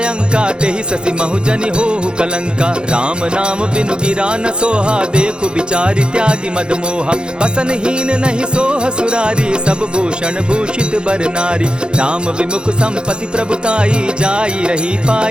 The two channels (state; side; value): late; left; 0.050 ms